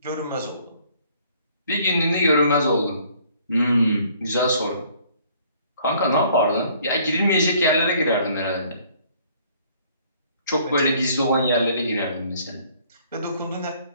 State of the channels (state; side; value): inverted; both; correlation -0.60